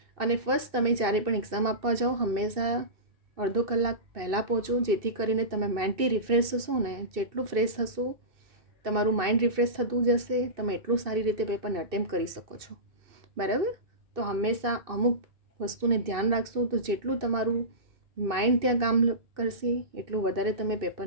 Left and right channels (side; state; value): left; late; 2.6 ms